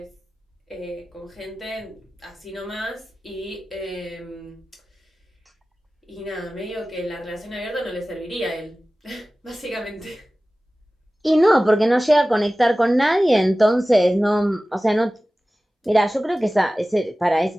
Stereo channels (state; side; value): normal; both; correlation 0.96